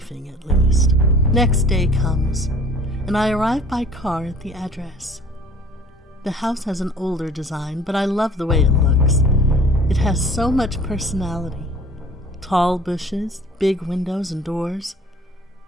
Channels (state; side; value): normal; both; correlation 0.49